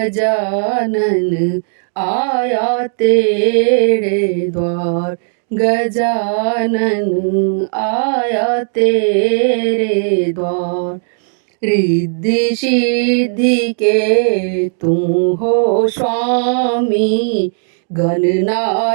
आया तेरे द्वार। गजानन आया तेरे द्वार। रिद्धि सिद्धि के तुम हो स्वामी,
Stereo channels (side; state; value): left; silent; digital silence